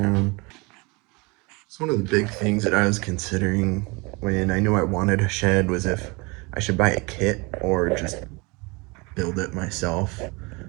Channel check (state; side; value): quieter; left; 27.4 dB